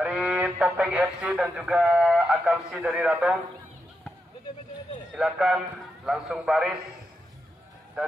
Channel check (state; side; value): normal; both; correlation 0.85